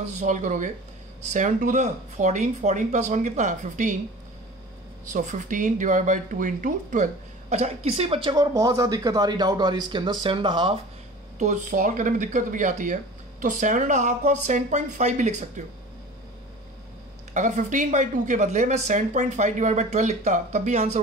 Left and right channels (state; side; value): normal; both; correlation 0.39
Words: से सॉल्व करोगे? 7 to the 14, 14 प्लस 1 कितना है? 15। सो 15 डिवाइड बाई 2 इंटू 12। अच्छा, किसी बच्चे को और बहुत ज़्यादा दिक्कत आ रही, डाउट आ रही इसके अंदर 7.5, तो सॉल्व करने में दिक्कत भी आती है, तो 7.5 को आप 7.5 भी लिख सकते हो। अगर 15/2 के बदले मैं 7.5 डिवाइड बाई 12 लिखता तब भी आंसर